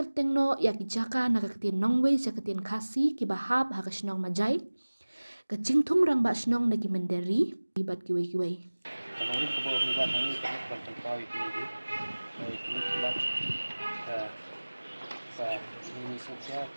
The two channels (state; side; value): inverted; both; correlation -1.00